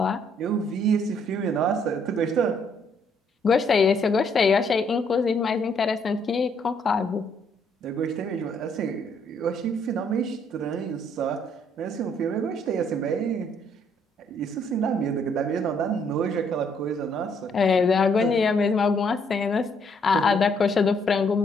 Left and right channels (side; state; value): both; normal; correlation 0.68